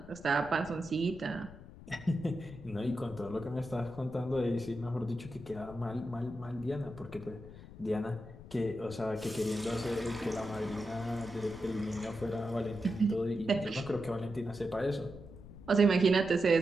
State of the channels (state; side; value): noise; left; rumble, 16 dB below the sound